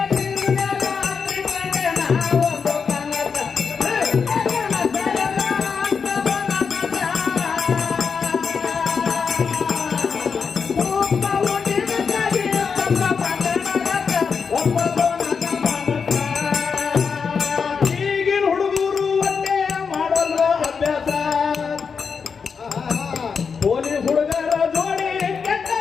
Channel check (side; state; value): right; quieter; 5.8 dB